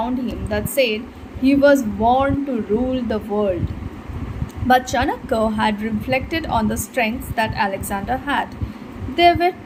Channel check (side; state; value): both; identical; correlation 1.00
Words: him that said he was born to rule the world. But Chanakya had reflected on the strengths that Alexander had. There were